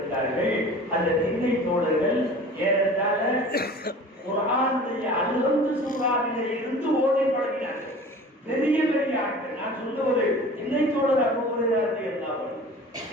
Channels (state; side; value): normal; both; correlation 0.42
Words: அந்த திண்ணை தோழர்கள் ஏறத்தாழ குர்ஆனுடைய அல்ஹம்து சூராவிலே இருந்து ஓதி பழகினார்கள். பெரிய பெரிய ஆட்கள். நான் சொல்லுவது திண்ணை தோழர் அபூ ஹுரைரா ரலியல்லாஹு அன்ஹு,